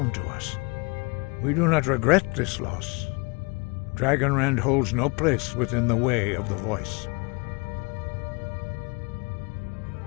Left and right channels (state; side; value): quieter; right; 30.1 dB